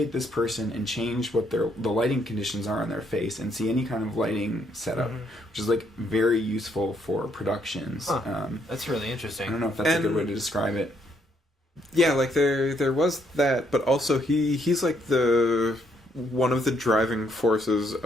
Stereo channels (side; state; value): both; normal; correlation 0.72